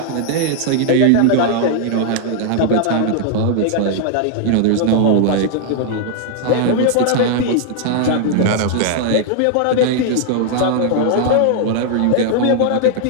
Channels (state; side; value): different; both; correlation 0.00